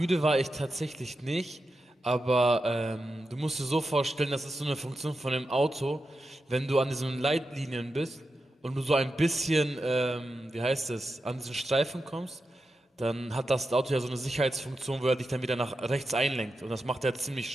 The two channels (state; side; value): normal; both; correlation 0.89